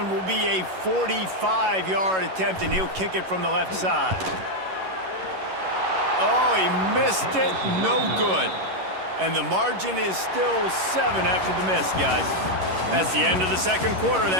will be a 45-yard attempt, and he'll kick it from the left side. Oh, he missed it. No good. And the margin is still 7 after the miss, guys. That's the end of the second quarter.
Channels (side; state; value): left; late; 11 ms